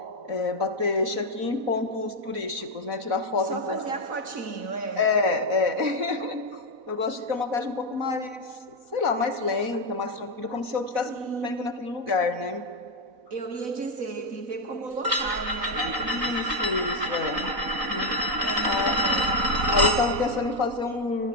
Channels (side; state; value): left; late; 4.0 ms